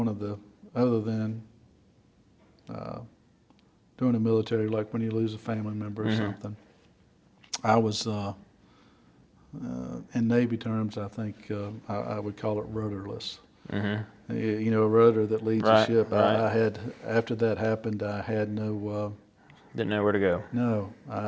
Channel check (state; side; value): identical; both; correlation 1.00